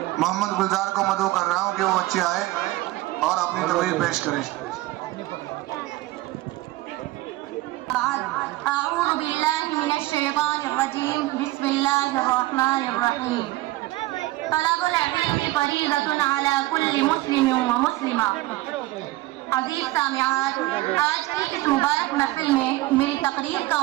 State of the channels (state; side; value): quieter; left; 18.3 dB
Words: محمد گلزار کو مدعو کر رہا ہوں کہ وہ بچے آئے اور اپنی تقریر پیش کریں۔ اعوذ باللہ من الشیطان الرجیم، بسم اللہ الرحمن الرحیم۔ طلب العلم فریضۃ علی کل مسلم و مسلمہ۔ عزیز سامعات، آج کی اس مبارک محفل میں میری تقریر کا